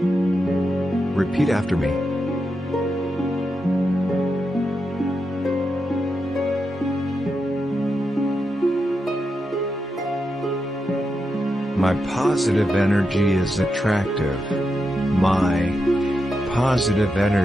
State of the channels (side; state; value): both; normal; correlation 0.86